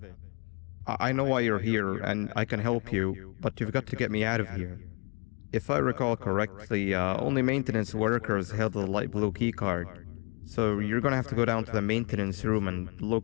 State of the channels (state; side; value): quieter; right; 33.4 dB